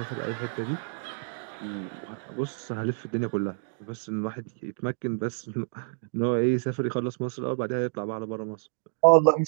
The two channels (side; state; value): left; silent; digital silence